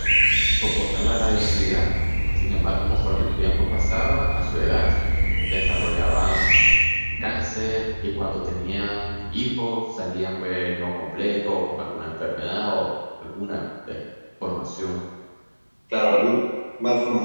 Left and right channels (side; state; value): both; inverted; correlation -1.00